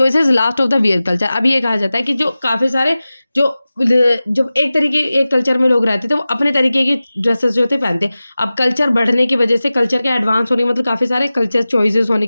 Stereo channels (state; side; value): inverted; both; correlation -0.96